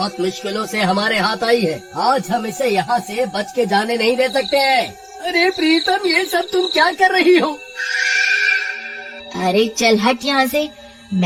मुश्किलों से हमारे हाथ आई है, आज हम इसे यहाँ से बच के जाने नहीं दे सकते हैं। अरे प्रीतम, ये सब तुम क्या कर रही हो? अरे चल हट यहाँ से,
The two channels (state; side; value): identical; both; correlation 1.00